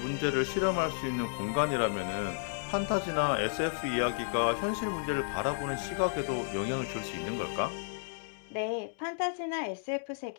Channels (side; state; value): right; silent; digital silence